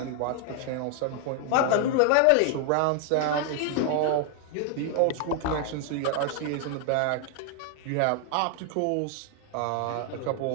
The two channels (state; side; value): different; both; correlation 0.00